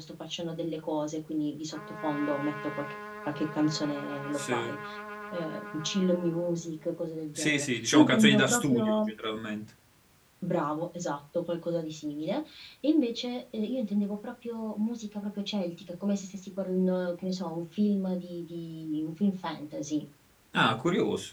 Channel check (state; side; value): identical; both; correlation 1.00